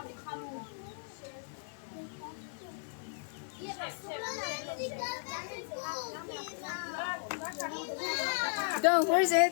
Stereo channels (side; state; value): right; silent; digital silence